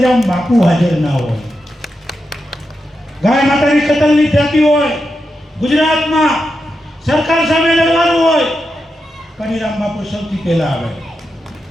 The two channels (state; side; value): normal; both; correlation 0.87